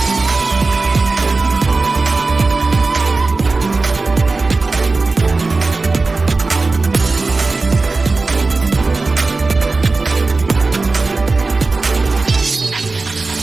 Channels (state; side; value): quieter; left; 3.7 dB